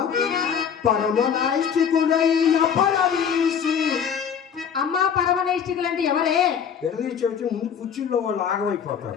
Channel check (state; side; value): quieter; right; 7.5 dB